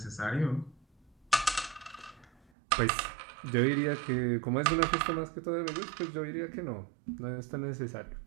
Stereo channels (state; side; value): drops out; left; at 2.5 s